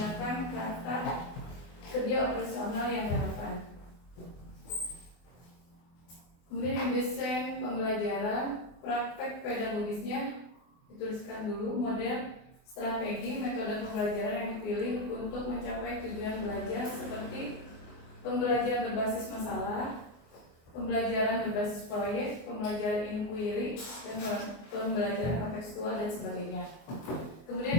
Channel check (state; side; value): late; right; 24 ms